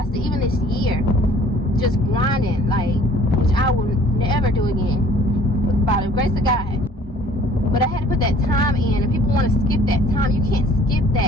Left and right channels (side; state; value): both; normal; correlation 0.54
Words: Even this year, just grinding, like, which I will never do again, by the grace of God. But I had to put that time in, and people want to skip that time. You can't skip